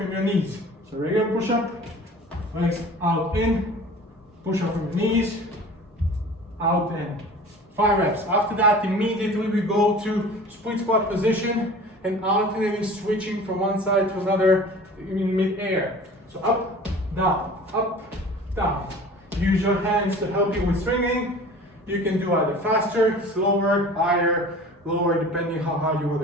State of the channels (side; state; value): both; normal; correlation 0.42